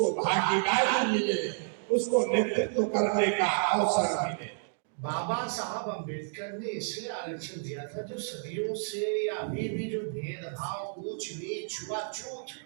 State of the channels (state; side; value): silent; left; digital silence